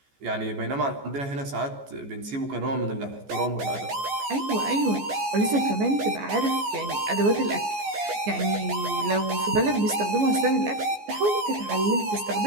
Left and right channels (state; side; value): late; left; 14 ms